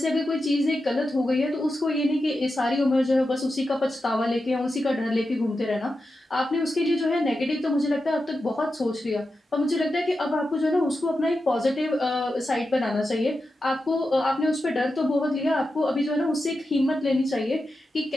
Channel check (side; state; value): both; normal; correlation 0.90